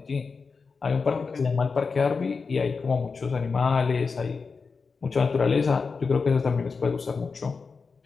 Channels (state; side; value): quieter; right; 4.8 dB